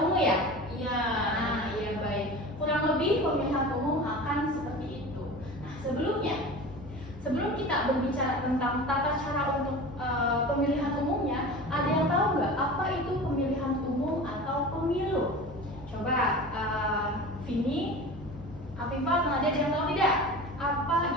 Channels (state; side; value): normal; both; correlation 0.35